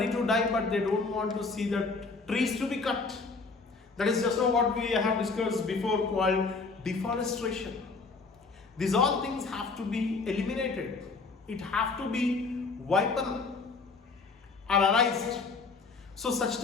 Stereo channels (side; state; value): right; quieter; 4.2 dB